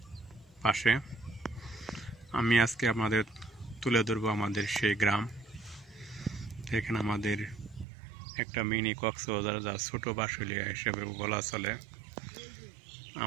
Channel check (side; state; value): left; drops out; at 7.9 s